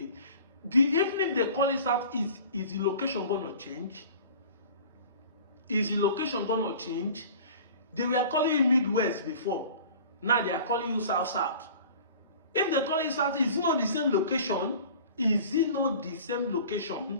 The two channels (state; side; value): inverted; both; correlation -0.43